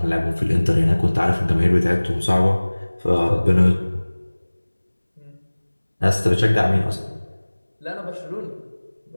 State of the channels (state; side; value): inverted; both; correlation -1.00